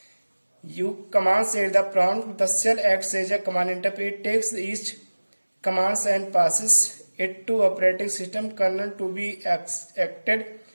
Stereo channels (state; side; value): inverted; both; correlation -1.00